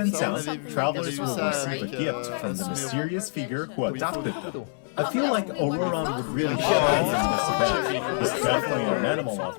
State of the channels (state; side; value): silent; right; 61 dB below the other